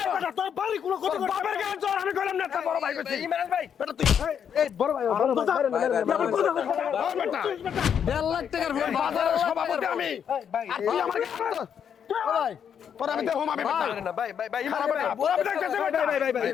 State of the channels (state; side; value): quieter; right; 8.1 dB